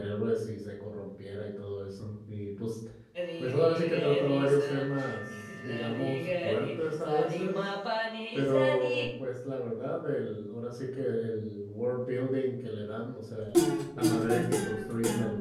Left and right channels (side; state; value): both; identical; correlation 1.00